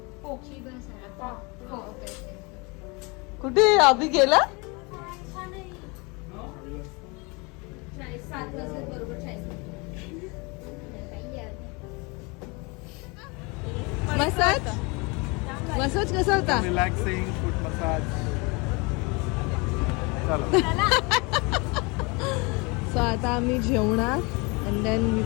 कुठे अभि गेला? 7 वाजता बरोबर 40. मसाज मसाज कसा होता? Relaxing foot massage. चला सो आता आम्ही जेवणार and then we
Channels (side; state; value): right; quieter; 28.3 dB